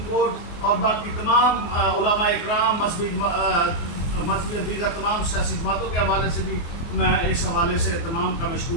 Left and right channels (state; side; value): late; right; 24 ms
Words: کورٹ اور باقی تمام علماء اکرام مذہبی دیگر تمام سیاسی جماعتوں کے حوالے سے بھی میں اس حوالے سے تمام کا